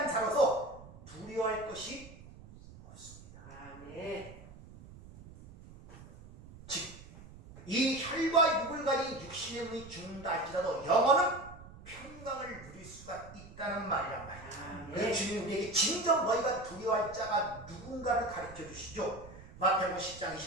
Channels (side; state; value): right; noise; rumble, 18 dB below the sound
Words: 자로서 두려워할 것이 없습니다. 아멘. 즉 이 혈과 육을 가진 육신의 몸이 죽는다 할지라도 영혼은 평강을 누릴 수가 있다는 말이란 말이에요. 그래서 주님이 우리에게 진정 너희가 두려워할 자가 누군가를 가르쳐 주시죠. 마태복음 10장